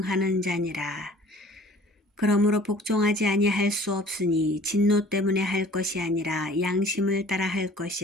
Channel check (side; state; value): both; normal; correlation 0.50